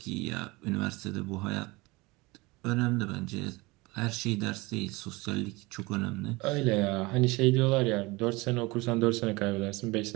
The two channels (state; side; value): quieter; left; 23.5 dB